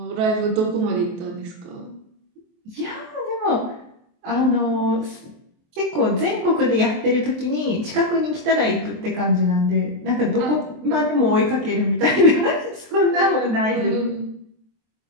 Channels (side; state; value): left; late; 23 ms